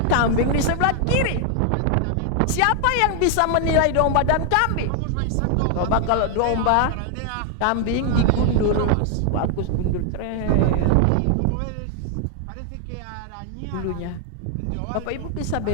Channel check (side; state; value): both; different; correlation 0.00